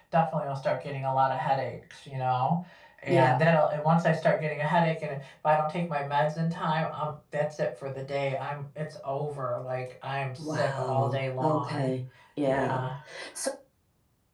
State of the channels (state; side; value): identical; both; correlation 1.00